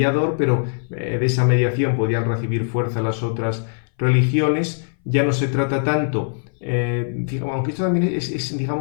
pero de esa mediación podían recibir fuerza las otras religiones, ya no se trata tanto aunque esto también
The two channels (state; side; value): silent; right; 61 dB below the other